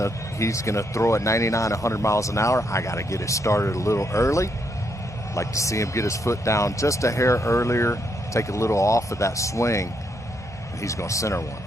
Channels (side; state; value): both; normal; correlation 0.77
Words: throw at 99, 100 miles an hour. I got to get it started a little early. Like to see him get his foot down just a hair earlier, take a little off of that swing, and he's going to center one.